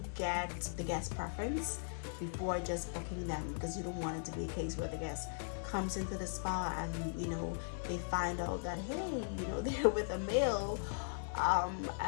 get the guest preference before just booking them, because you don't want it to be a case where the guest comes into the spa and they find out that, hey, they're with a male,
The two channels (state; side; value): silent; right; digital silence